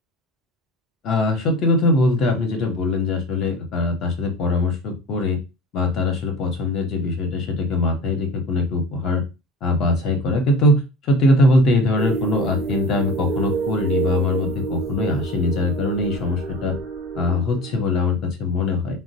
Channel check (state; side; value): normal; both; correlation 0.35